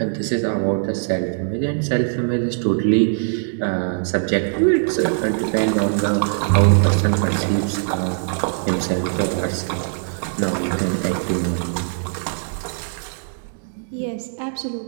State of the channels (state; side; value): silent; left; digital silence